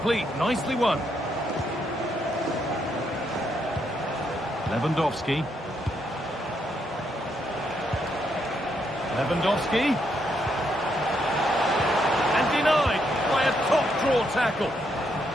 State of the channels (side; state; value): both; normal; correlation 0.77